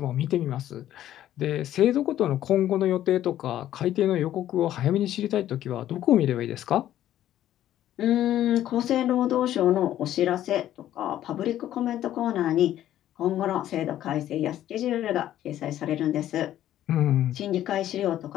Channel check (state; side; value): quieter; right; 12.4 dB